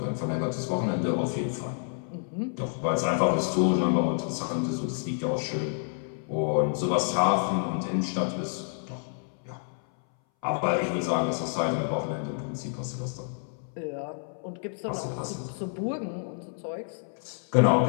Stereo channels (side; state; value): right; silent; 59 dB below the other